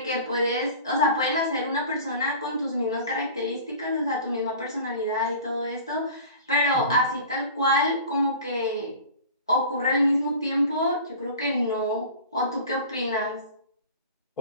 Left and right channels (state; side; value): inverted; both; correlation -0.40